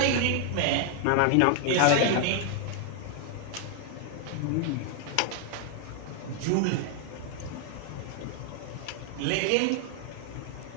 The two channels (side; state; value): both; different; correlation 0.00